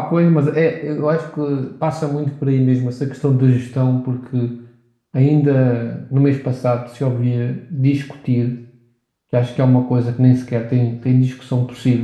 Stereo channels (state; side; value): identical; both; correlation 1.00